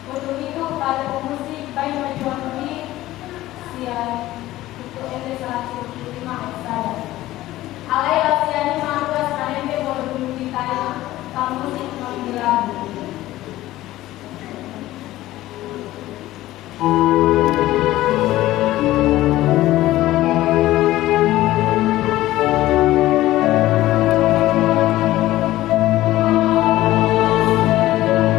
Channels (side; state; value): right; quieter; 15.9 dB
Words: Untuk itu, pada pemusik baik majuan ini siap untuk NT 175 saya. Alailah siani mantuas kanembe boleh ditanya kamusik mengilagu.